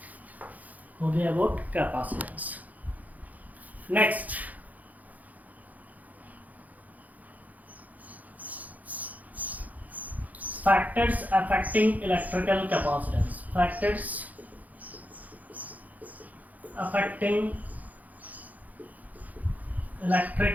हो गया about capacitance. Next factors affecting electrical capacitance. Factors affecting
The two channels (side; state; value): left; late; 0.079 ms